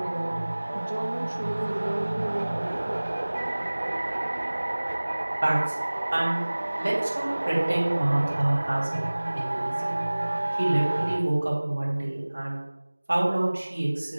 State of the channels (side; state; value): both; inverted; correlation -1.00